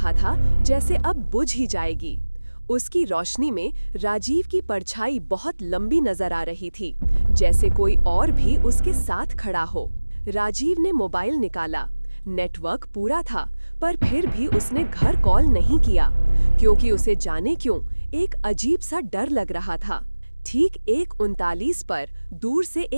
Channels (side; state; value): both; inverted; correlation -1.00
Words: था जैसे अब बुझ ही जाएगी। उसकी रोशनी में राजीव की परछाई बहुत लंबी नजर आ रही थी, जैसे कोई और भी उसके साथ खड़ा हो। राजीव ने मोबाइल निकाला। नेटवर्क पूरा था, पर फिर भी उसने घर कॉल नहीं किया, क्योंकि उसे जाने क्यों एक अजीब सा डर लग रहा था। ठीक 1:39 पर दूर से